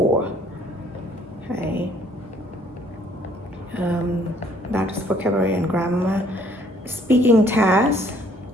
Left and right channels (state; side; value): normal; both; correlation 0.61